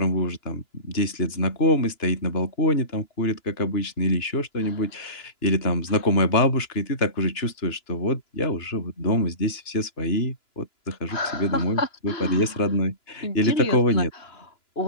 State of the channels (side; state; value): right; late; 2.9 ms